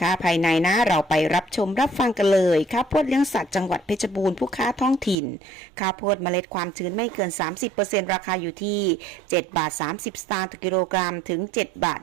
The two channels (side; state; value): left; drops out; at 5.2 s